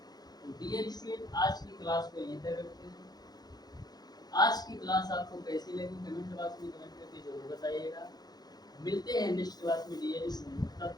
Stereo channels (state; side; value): late; right; 0.19 ms